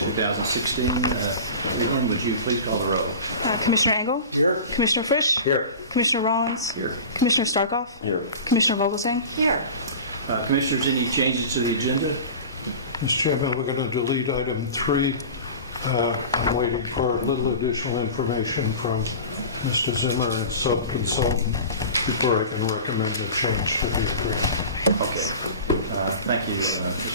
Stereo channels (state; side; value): inverted; both; correlation -0.35